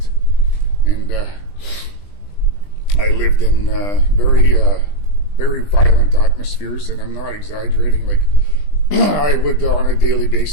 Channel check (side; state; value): right; late; 20 ms